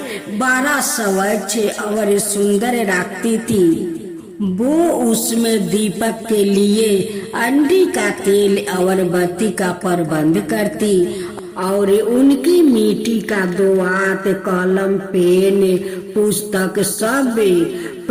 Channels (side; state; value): both; identical; correlation 1.00